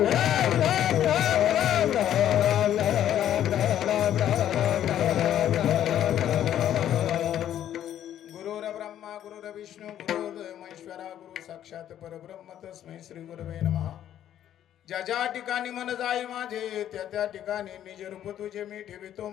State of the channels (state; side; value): quieter; right; 11.0 dB